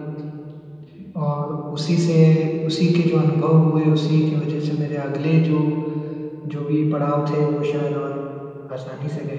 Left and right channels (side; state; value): both; identical; correlation 1.00